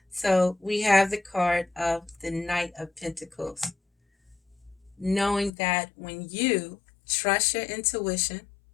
So we have the card of the Knight of Pentacles, knowing that when you trust your intuition,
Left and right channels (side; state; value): right; drops out; at 5.5 s